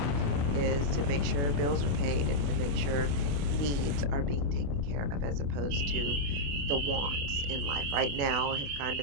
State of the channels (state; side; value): late; left; 28 ms